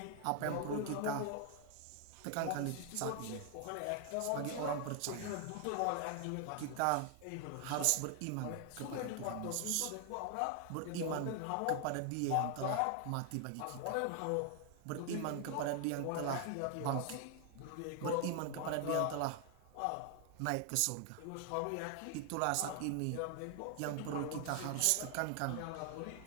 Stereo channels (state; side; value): different; both; correlation 0.00